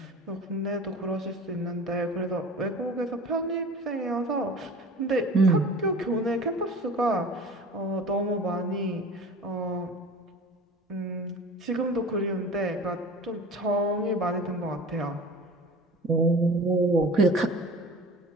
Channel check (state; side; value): normal; both; correlation 0.39